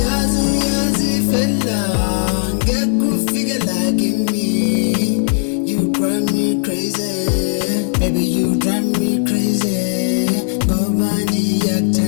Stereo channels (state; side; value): silent; right; digital silence